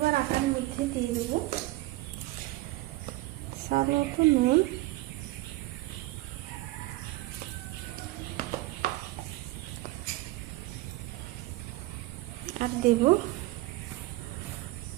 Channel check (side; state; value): left; quieter; 18.9 dB